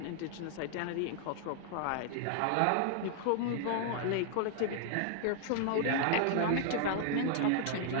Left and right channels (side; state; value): both; different; correlation 0.00